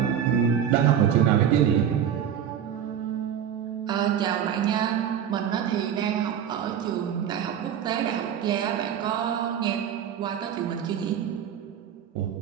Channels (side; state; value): left; quieter; 9.1 dB